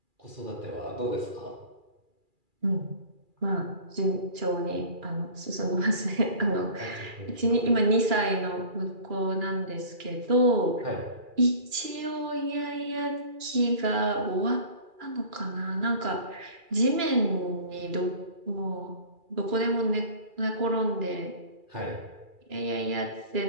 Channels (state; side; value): late; left; 2.4 ms